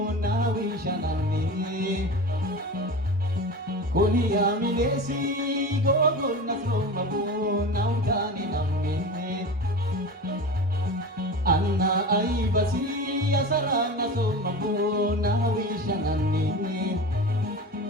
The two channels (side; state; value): both; normal; correlation 0.30